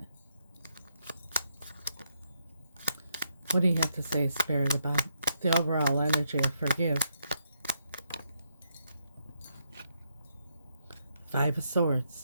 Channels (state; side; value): inverted; both; correlation -0.77